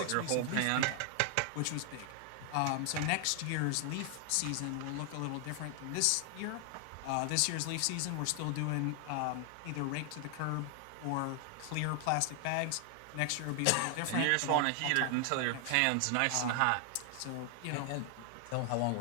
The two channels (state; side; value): different; both; correlation 0.00